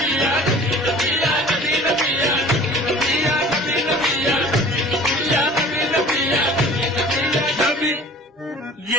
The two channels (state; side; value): normal; both; correlation 0.45